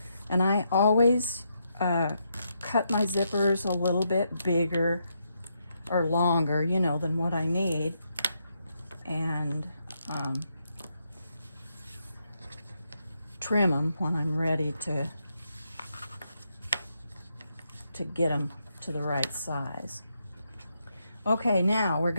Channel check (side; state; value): both; inverted; correlation -0.80